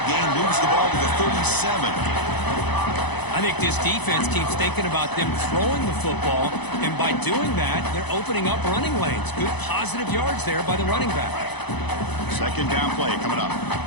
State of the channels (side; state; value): right; late; 0.99 ms